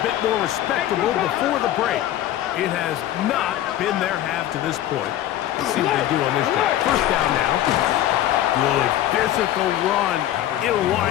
bit more respectable before the break. It has not been their half to this point. Let's see what they do on this drive. First down now. Good physical run. It'll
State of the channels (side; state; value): right; quieter; 12.9 dB